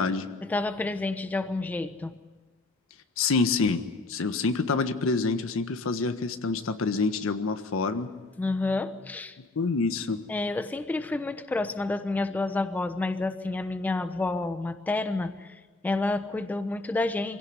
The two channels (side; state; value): right; quieter; 3.1 dB